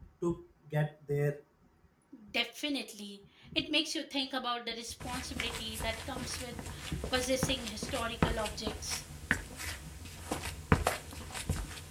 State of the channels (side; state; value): both; identical; correlation 1.00